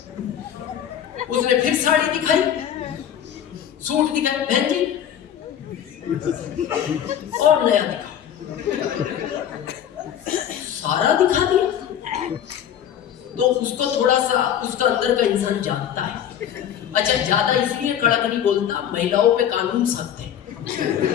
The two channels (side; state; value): right; quieter; 9.8 dB